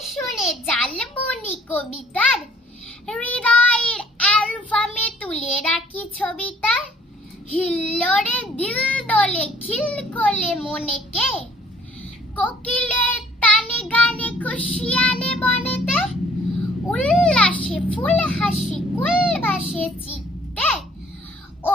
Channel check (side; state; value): both; normal; correlation 0.59